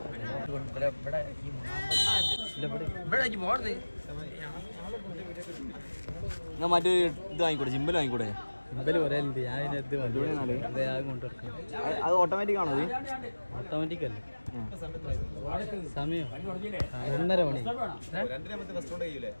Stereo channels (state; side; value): inverted; both; correlation -1.00